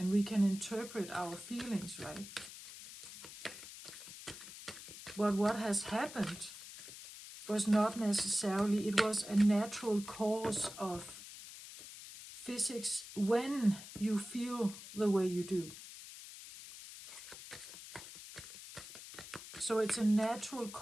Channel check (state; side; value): noise; left; hiss, 13 dB below the sound